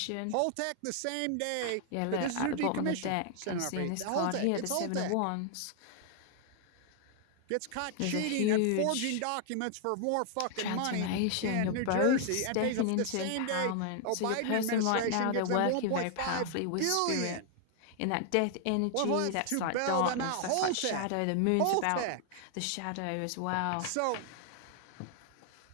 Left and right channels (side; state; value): both; different; correlation 0.00